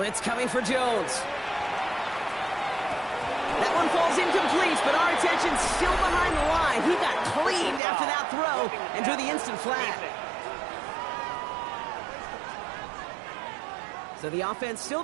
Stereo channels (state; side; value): drops out; left; at 7.8 s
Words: coming for Jones. That one falls incomplete, but our attention's still behind the line. He got cleaned after that throw and drew the instant flag. So the offense still